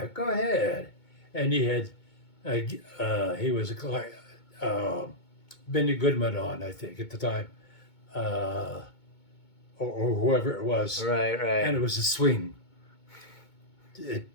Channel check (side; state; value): right; late; 2.2 ms